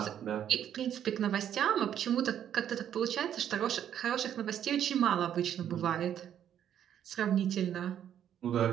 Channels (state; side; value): quieter; left; 9.9 dB